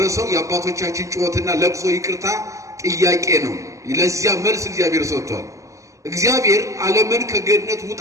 የአባቶቻችን ጩኸትና ለቅሶ ይቅርታ ጥያቄ ነው። ለዚያ መልስ እግዚአብሔር ሰጥቷል። እግዚአብሔር ዓለምን ከገነት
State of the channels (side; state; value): left; late; 0.16 ms